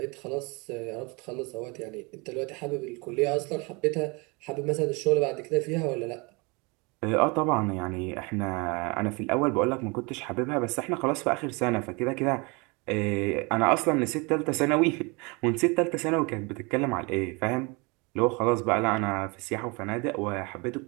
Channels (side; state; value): left; quieter; 28.6 dB